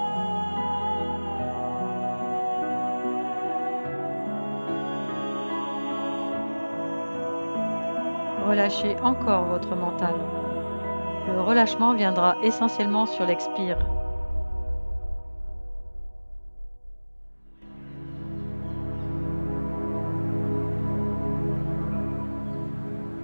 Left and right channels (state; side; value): inverted; both; correlation -1.00